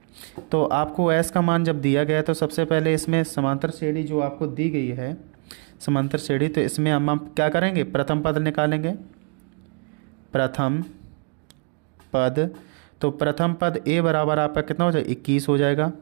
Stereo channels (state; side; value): quieter; left; 39.3 dB